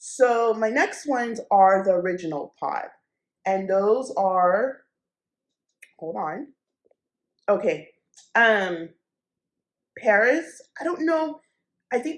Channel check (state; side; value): identical; both; correlation 1.00